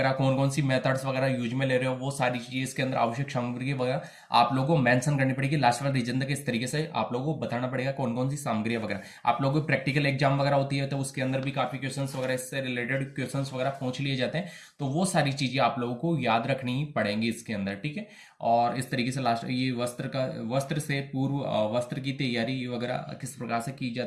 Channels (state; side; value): identical; both; correlation 1.00